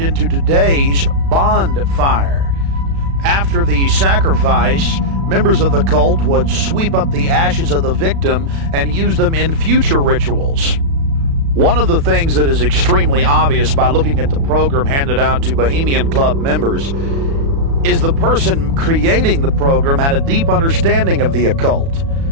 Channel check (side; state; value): left; late; 36 ms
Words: into today's bonfire. After the sacrifice, members of the cult would sweep up the ashes of the victim and use them in future rituals. One of the things that is extremely obvious by looking at the program handed out to Bohemian Club members is the person creating the program had a deep understanding of the occult.